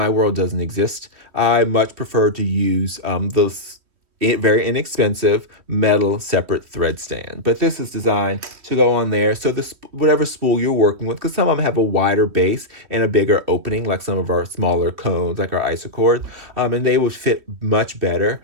world doesn't exist. I much prefer to use those very inexpensive metal separate thread stand. But this is designed to go on there. So whatever spool you're working with, because some of them have a wider base and a bigger opening, like some of our smaller cones, like our isocord, and they would fit much better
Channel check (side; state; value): left; late; 3.1 ms